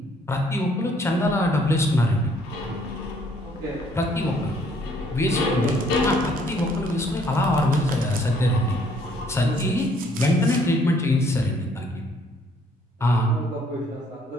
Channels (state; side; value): normal; both; correlation 0.64